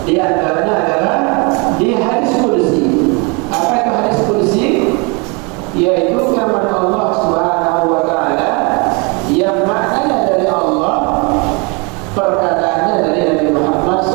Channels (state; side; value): quieter; left; 30.7 dB